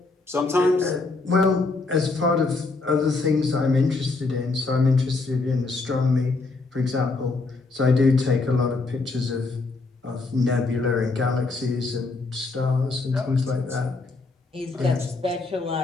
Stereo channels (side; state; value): right; quieter; 3.7 dB